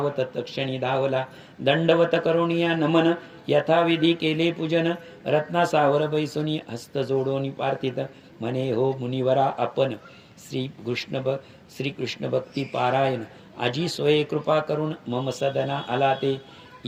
तक्षणी धावला दंडवत करुणिया नमन यथाविधी केले पूजन रत्ना सावर बैसुनी हस्त जोडोनी पार्थित म्हणे हो मुनिवरा आपण श्री कृष्ण भक्ती पारायण आजी सोये कृपा करून मम सदना आला ते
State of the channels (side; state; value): both; identical; correlation 1.00